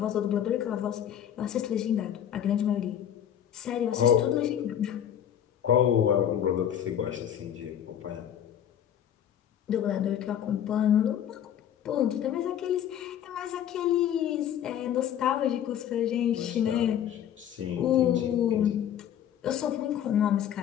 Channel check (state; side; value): quieter; right; 9.9 dB